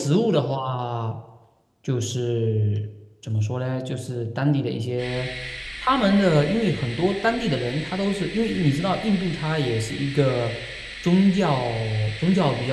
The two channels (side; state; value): both; identical; correlation 1.00